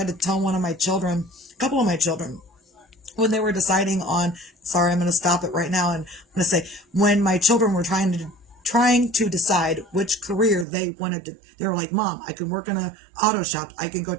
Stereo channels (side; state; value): left; drops out; at 10.7 s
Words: to tell one of my children, a couple of my children, when they were deciding on, sorry, I'm going to stop it right now. And I'm going to say, when my children were trying to decide which career they wanted to, they were like, Mom, I can work in a auto shop. I can go